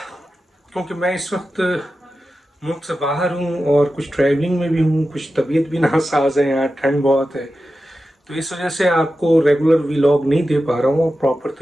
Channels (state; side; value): normal; both; correlation 0.92